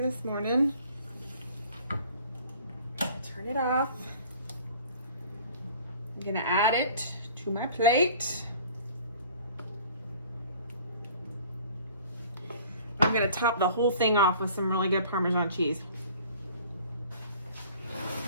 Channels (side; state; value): both; inverted; correlation -0.49